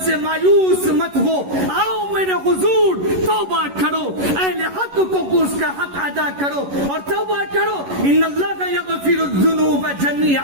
سے مایوس مت ہو, آؤ میرے حضور توبہ کرو, اہل حق کو اس کا حق ادا کرو اور توبہ کرو. ان اللہ یغفر الذنوب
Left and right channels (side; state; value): left; late; 11 ms